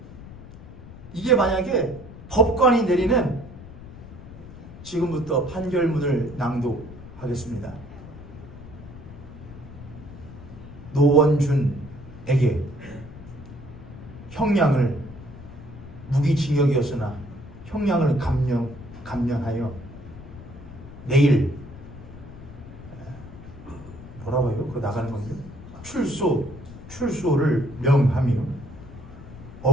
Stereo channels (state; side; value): noise; left; rumble, 15 dB below the sound